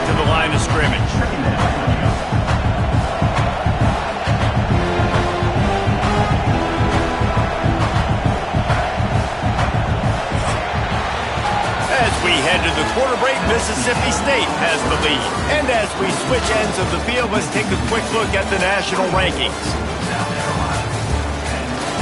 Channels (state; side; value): identical; both; correlation 1.00